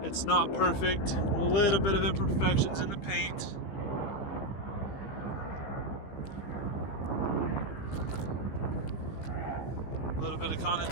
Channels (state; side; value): late; right; 15 ms